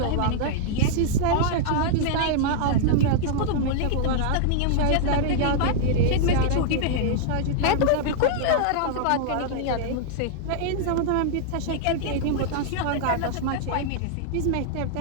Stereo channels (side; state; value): both; different; correlation -0.01